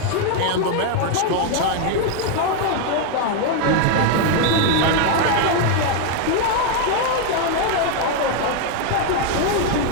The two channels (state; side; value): different; both; correlation 0.01